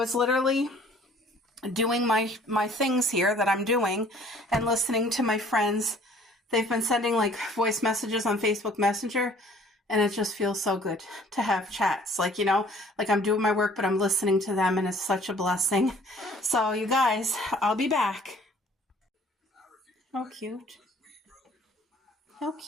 literally doing my things here that I'm doing and listening to my friends. They've been sending like voice messages on Facebook Messenger, and it just feels so good to have chats. Like, you know, like I'm doing my work, but I'm listening to them, and it's such a blessing. So you guys, I'll be back. How cute. How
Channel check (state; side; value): normal; both; correlation 0.55